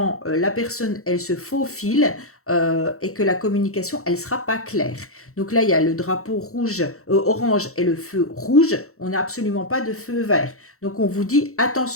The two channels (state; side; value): late; right; 0.64 ms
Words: la personne, elle se faufile et que la communication, elle ne sera pas claire. Donc là, il y a le drapeau rouge, orange et le feu rouge. On n'a absolument pas de feu vert. Donc on vous dit